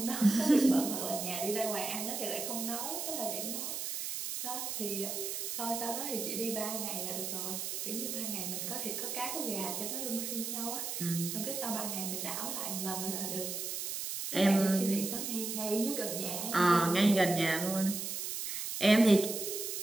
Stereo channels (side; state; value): right; noise; hiss, 4 dB below the sound